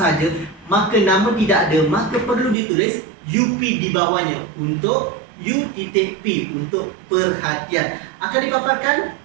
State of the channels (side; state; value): left; drops out; at 2.6 s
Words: maka nama tidak ada, maka perlu ditulis UP di bawahnya untuk U.P untuk perhatian. Akan dipaparkan